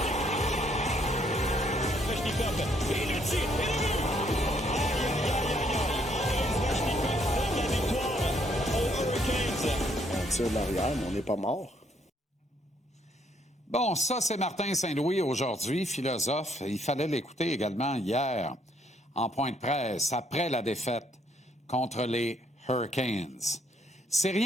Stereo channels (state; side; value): normal; both; correlation 0.69